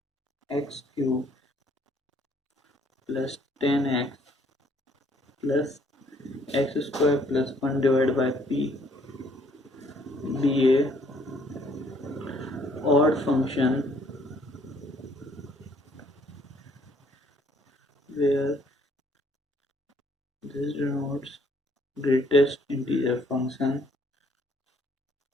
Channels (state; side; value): normal; both; correlation 0.63